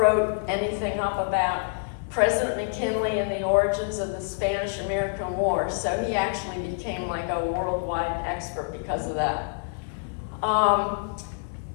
anything up about President McKinley and the origins of the Spanish-American War. So he actually became like a worldwide expert because of that.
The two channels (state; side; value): silent; right; digital silence